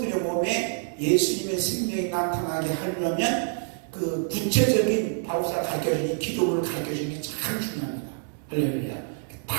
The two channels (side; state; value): left; silent; 60 dB below the other